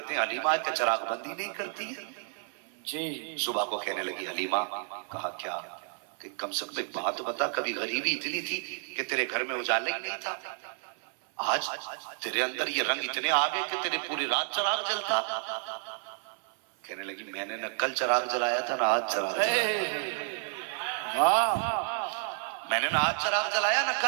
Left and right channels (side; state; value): left; silent; 57 dB below the other